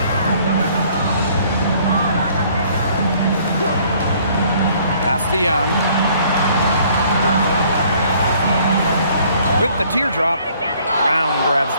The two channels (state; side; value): inverted; both; correlation -0.60